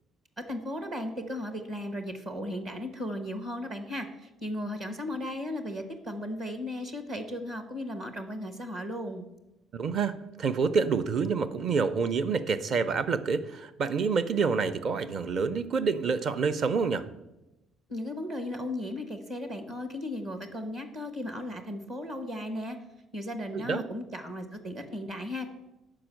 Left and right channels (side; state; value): left; quieter; 3.3 dB